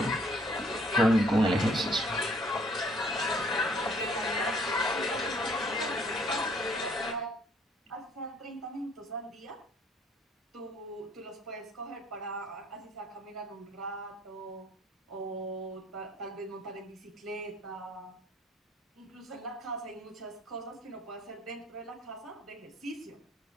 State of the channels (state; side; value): normal; both; correlation 0.62